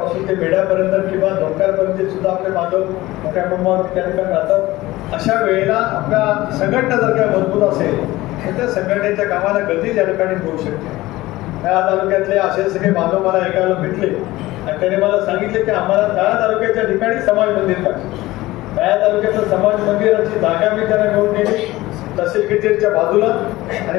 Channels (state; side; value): quieter; right; 18.2 dB